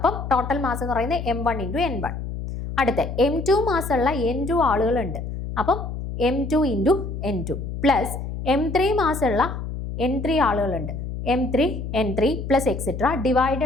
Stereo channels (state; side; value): noise; left; hum, 6 dB below the sound